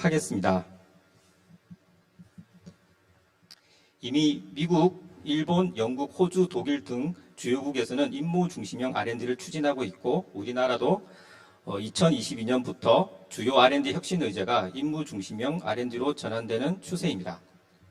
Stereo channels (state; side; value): identical; both; correlation 1.00